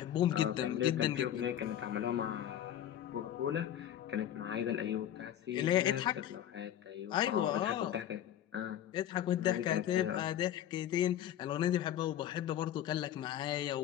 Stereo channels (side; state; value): right; quieter; 11.1 dB